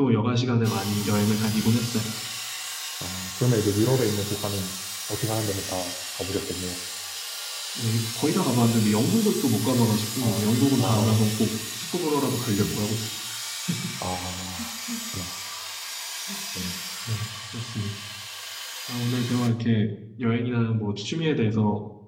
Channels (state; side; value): identical; both; correlation 1.00